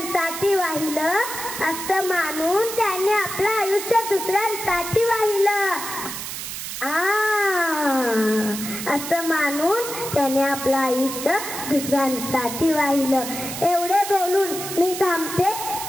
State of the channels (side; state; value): right; noise; hiss, 7 dB below the sound